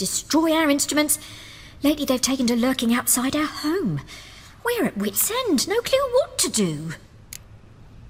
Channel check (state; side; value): identical; both; correlation 1.00